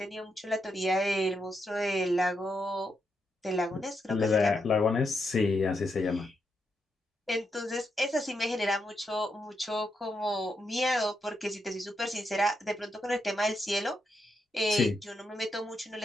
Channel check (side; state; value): both; normal; correlation 0.82